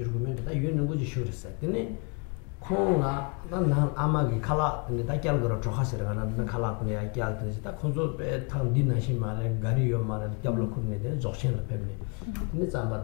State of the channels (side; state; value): right; quieter; 34.4 dB